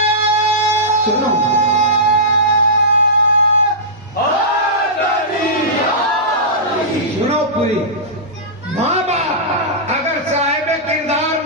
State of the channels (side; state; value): both; normal; correlation -0.16